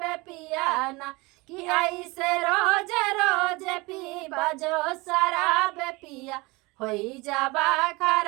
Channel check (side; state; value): left; quieter; 24.3 dB